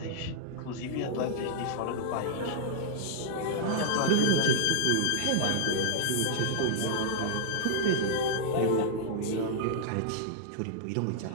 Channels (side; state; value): both; different; correlation -0.01